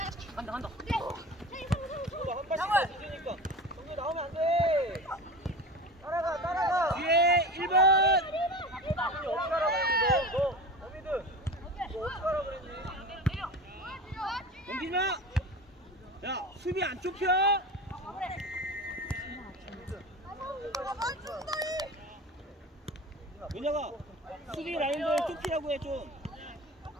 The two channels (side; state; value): both; normal; correlation 0.32